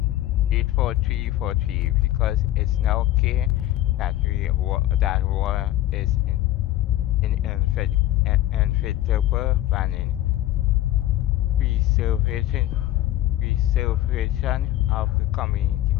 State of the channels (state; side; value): quieter; right; 14.4 dB